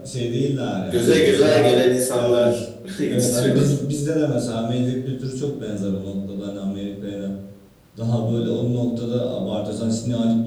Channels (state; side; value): identical; both; correlation 1.00